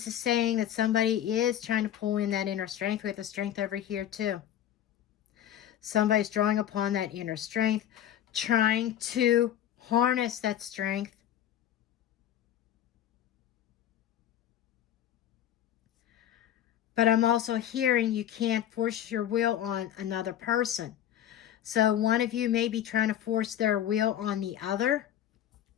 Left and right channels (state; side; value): quieter; right; 11.1 dB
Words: is saying that somebody is trying to pull in that inner strength. We have the Strength over here too. Somebody's drawing upon that inner strength trying to harness that strength. But I'm also hearing you can't force your will on another person. So one of you may be trying to force their will on the other,